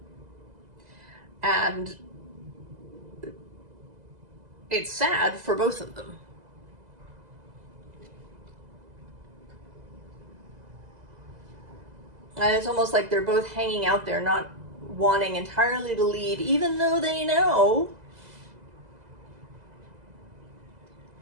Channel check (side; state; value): left; late; 2.0 ms